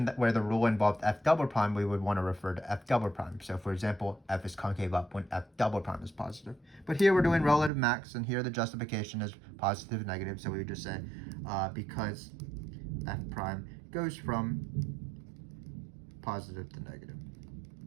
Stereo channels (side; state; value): left; drops out; at 7.7 s